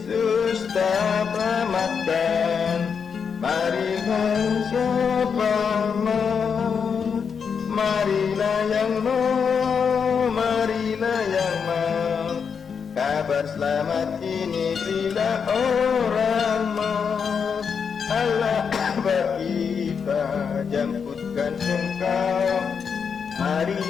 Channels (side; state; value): right; quieter; 6.4 dB